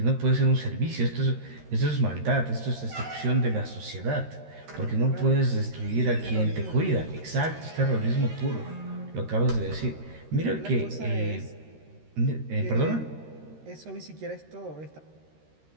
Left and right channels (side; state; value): left; late; 13 ms